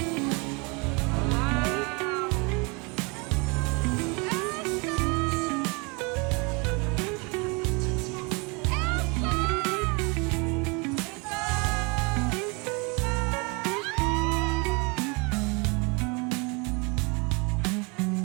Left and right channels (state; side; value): quieter; left; 29.9 dB